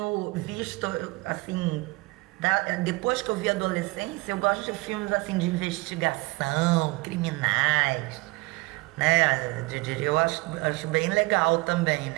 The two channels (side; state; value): left; quieter; 23.9 dB